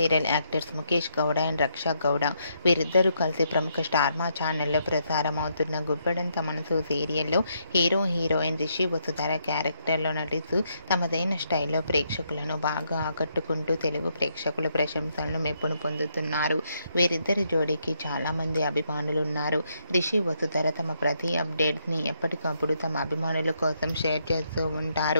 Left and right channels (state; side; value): inverted; both; correlation -0.76